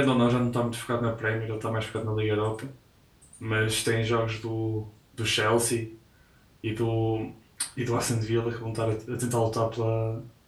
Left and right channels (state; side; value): identical; both; correlation 1.00